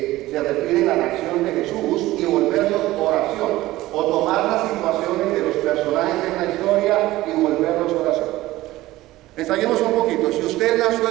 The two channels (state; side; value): quieter; left; 17.1 dB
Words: se refieren a la acción de Jesús y volverlos oración, o tomar las situaciones de los personajes en la historia y volverlos oración. Ensayemos un poquito. Si usted es la